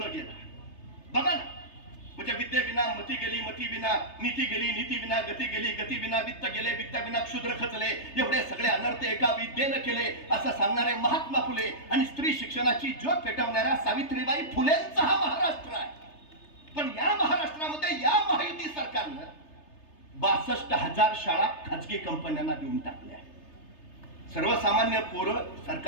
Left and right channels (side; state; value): right; late; 3.3 ms